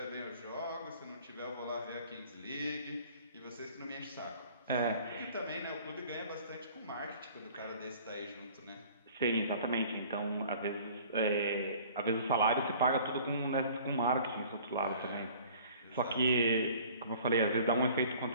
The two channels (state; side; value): inverted; both; correlation -0.50